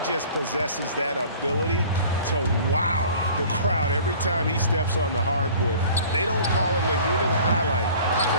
just possesses that ability to wow the crowd every time he steps on the hardwood. They don't call him the human highlight for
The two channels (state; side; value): inverted; both; correlation -0.47